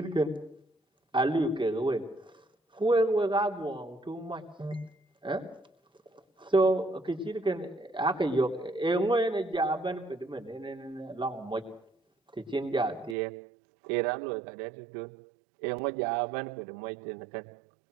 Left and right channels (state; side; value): drops out; left; at 13.2 s